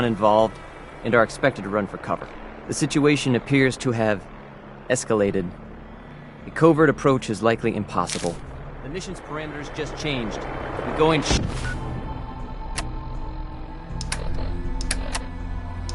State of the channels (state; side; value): identical; both; correlation 1.00